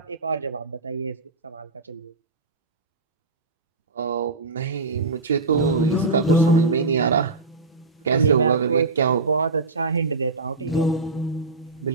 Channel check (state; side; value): quieter; left; 3.6 dB